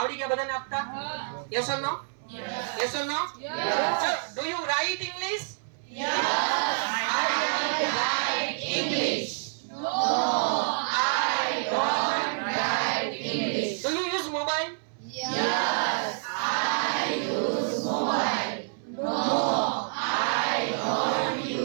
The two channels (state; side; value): silent; left; 60 dB below the other